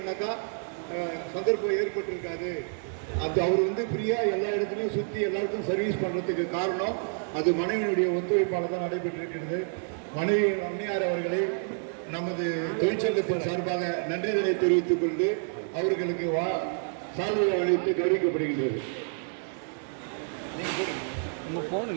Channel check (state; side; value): silent; left; 59 dB below the other